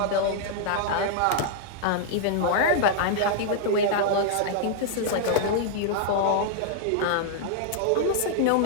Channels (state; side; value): different; both; correlation -0.01